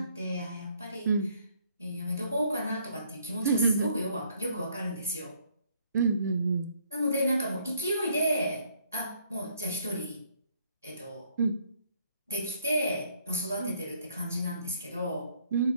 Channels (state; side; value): inverted; both; correlation -0.66